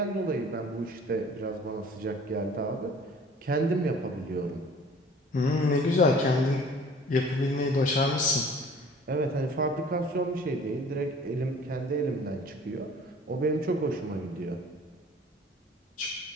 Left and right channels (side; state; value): both; normal; correlation 0.49